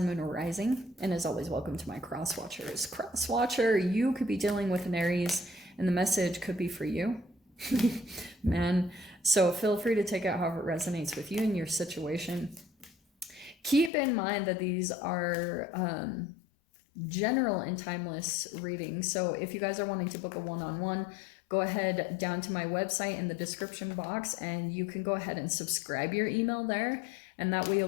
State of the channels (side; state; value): right; drops out; at 13.9 s